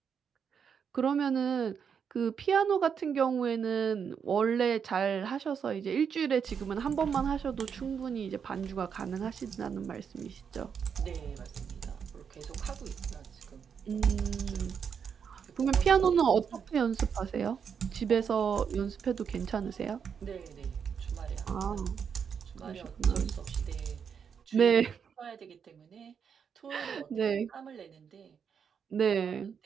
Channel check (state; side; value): quieter; left; 7.0 dB